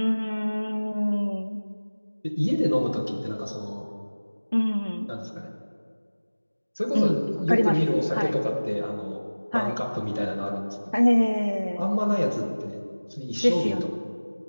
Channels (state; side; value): inverted; both; correlation -1.00